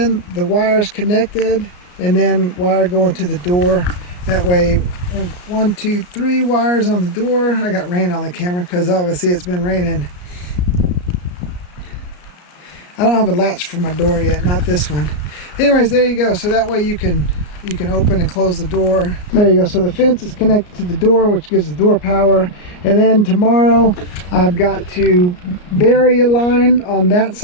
the wires connected, and then wire going to the door. That way, 1, 2, 3 wires on the door. I got rain on the camera because obviously it's been raining. I don't have a latch for my door yet, not this one. Anyways, there you go. So that way you can open and close the door. There you go. So the fence is connected to the door, which gives the door power. And then tomorrow I've got to bury a line on that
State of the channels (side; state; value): right; late; 34 ms